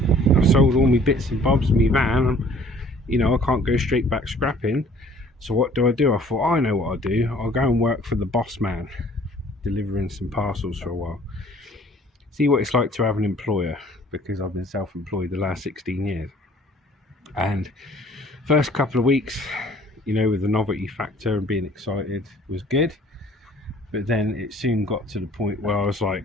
I've sold all my bits and bobs of my van. You know, I can't go straight back scrapping. So what do? I thought, I know what I'll do. I'll go and work for the boss man, delivering some parcels for a while. See what it's like to have an employer, because I've been self-employed the last 16 years. And first couple of weeks, you know, with the novelty factor and being excited was good. But then it soon got to the point where I was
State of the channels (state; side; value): normal; both; correlation 0.54